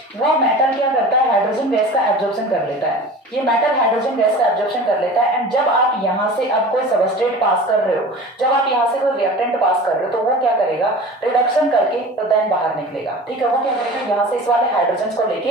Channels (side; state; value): both; normal; correlation 0.37